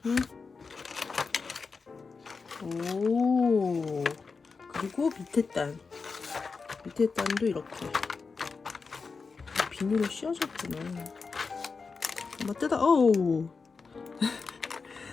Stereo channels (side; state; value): right; quieter; 4.7 dB